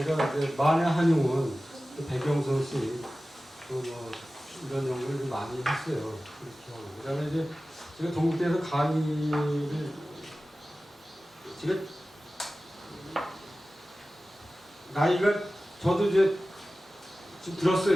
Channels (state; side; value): normal; both; correlation 0.96